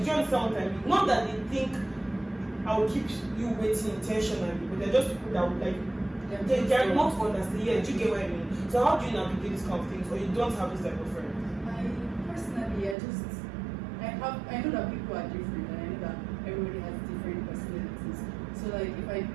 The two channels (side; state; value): left; drops out; at 13.0 s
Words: you understand what I mean? Not that they think I will keep you waiting intentionally, but they're just people that would like they're not understand. Yeah, do you get what I mean? So how do you navigate these kind of things, or you don't have this type of friend? Personally, I know that people are different, and I know that everybody has different personalities. So like if I